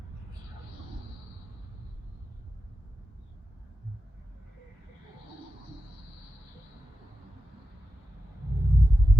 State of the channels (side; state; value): both; normal; correlation 0.91